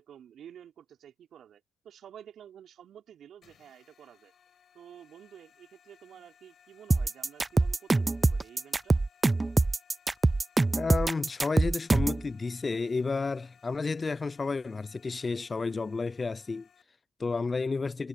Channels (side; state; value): both; normal; correlation 0.95